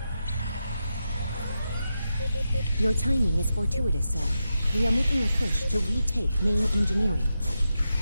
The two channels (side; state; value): both; inverted; correlation -0.88